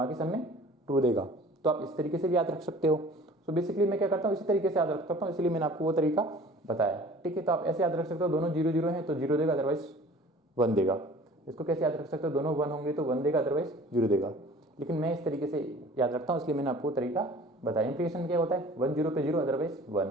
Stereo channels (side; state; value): both; normal; correlation 0.47